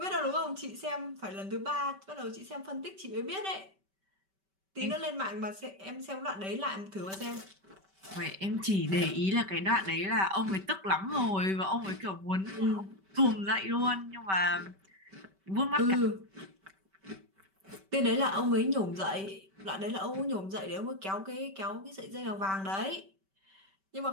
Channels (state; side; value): late; left; 5.2 ms